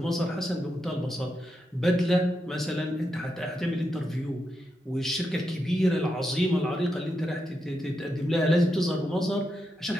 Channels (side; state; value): both; normal; correlation 0.85